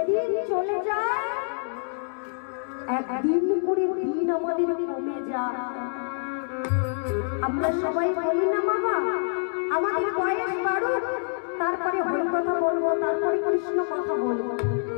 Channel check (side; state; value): right; silent; digital silence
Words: চলে যায়, একদিন করে দিন আমাদের কমে যায়। আমরা সবাই বলি না বাবা, আমাদের বয়স বাড়ুক, তারপরে হরি কথা বলবো, তারপরে কৃষ্ণ কথা বলবো।